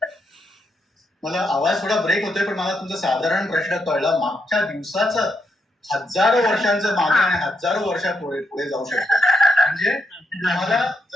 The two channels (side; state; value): both; normal; correlation 0.80